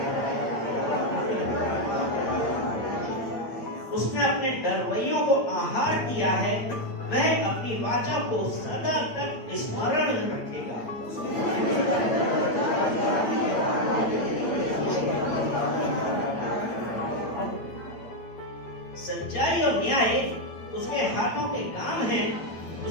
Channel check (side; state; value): right; late; 8.9 ms